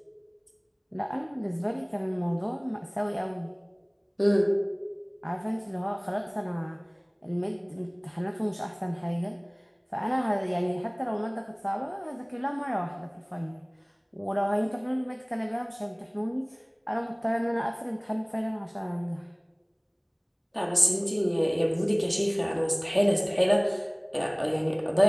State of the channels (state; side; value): identical; both; correlation 1.00